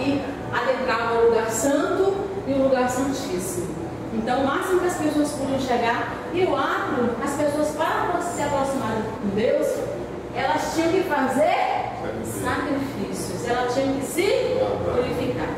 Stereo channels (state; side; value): identical; both; correlation 1.00